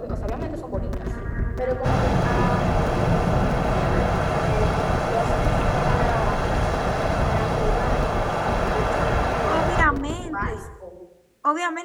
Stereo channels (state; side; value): identical; both; correlation 1.00